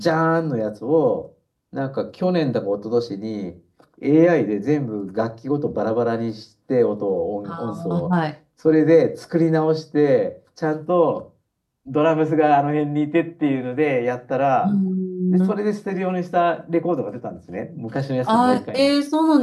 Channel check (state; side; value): identical; both; correlation 1.00